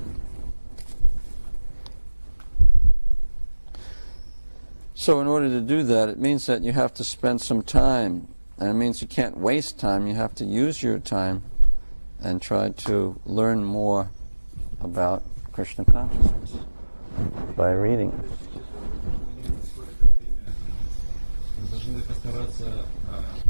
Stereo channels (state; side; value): inverted; both; correlation -1.00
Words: So in order to do that, it means that you have to spend some time, and it means you can't waste time. You have to use your time and try to learn more about Krishna consciousness by reading.